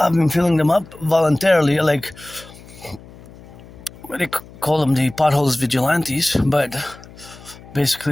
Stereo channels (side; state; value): left; noise; hum, 20 dB below the sound